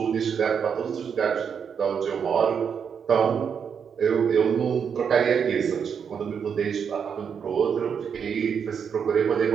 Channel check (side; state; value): left; quieter; 7.1 dB